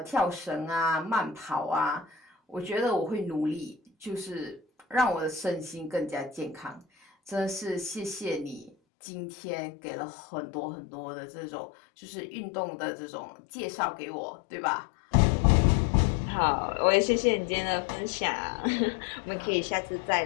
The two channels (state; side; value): drops out; right; at 8.7 s